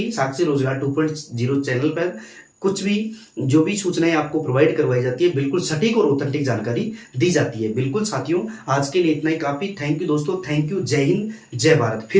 साक्षी रोजगार 2.0 चैनल पर कुछ भी जो भी सूचनाएं आपको प्रोवाइड करवाई जाती है, बिल्कुल सटीक और ऑथेंटिक जानकारी दी जाती है। बिल्कुल साथियों, आज के लिए इतना ही काफी। थैंक यू दोस्तों, थैंक यू। जय हिंद, जय भारत।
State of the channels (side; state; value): both; identical; correlation 1.00